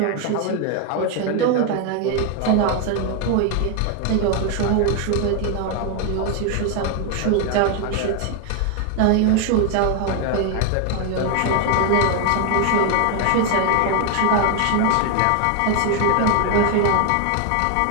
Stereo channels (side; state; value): both; different; correlation 0.01